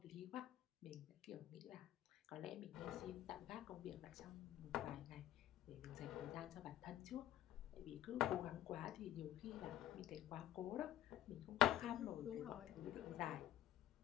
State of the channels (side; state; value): right; quieter; 12.8 dB